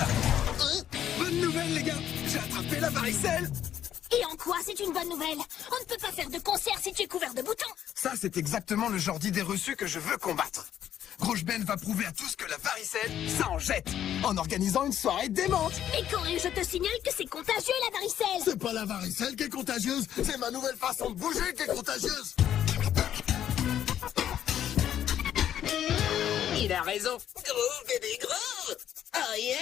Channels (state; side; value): quieter; right; 10.5 dB